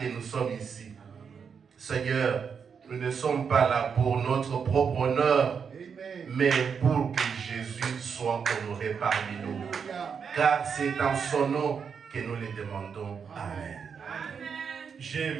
nous sommes ici. Seigneur, nous ne sommes pas là pour notre propre honneur, mais pour que Jésus soit honoré parmi nous. Car c'est dans son nom que nous le demandons. Amen. J'ai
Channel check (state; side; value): quieter; left; 6.5 dB